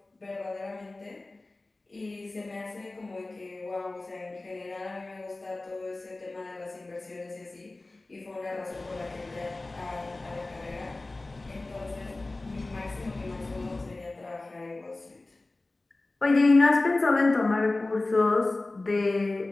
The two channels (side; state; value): right; quieter; 3.0 dB